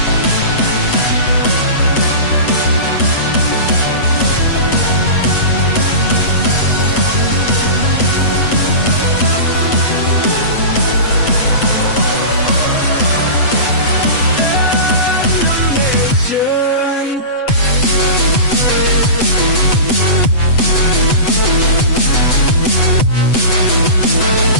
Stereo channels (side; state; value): right; late; 7.9 ms